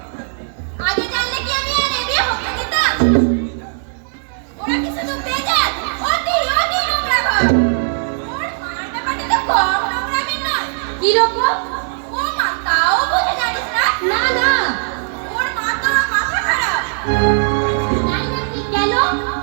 আগে জানলে কি আমি আর এ বিয়ে হতে দিতাম? ওরা কি শুধু বেজাত, অতি নোংরা ঘর। ওর মার ব্যাপারটা তো কম নোংরামির নয়। কি রকম? ও মা, তাও বুঝে জানিস না? না না। ওর মা তো মাথা খারাপ। তাই নাকি? কেন?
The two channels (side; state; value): left; silent; digital silence